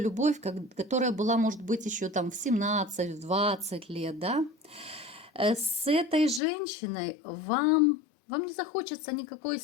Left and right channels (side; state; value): right; drops out; at 6.4 s